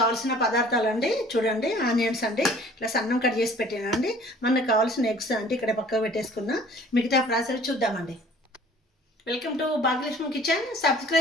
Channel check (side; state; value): both; normal; correlation 0.51